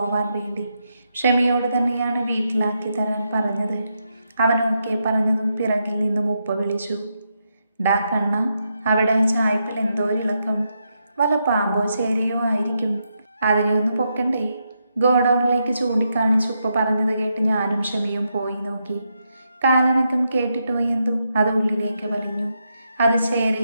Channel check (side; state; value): both; inverted; correlation -0.83